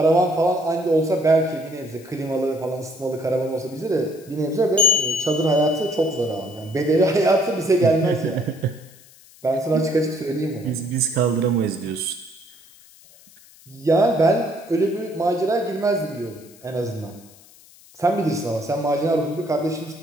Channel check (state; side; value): noise; left; hiss, 25 dB below the sound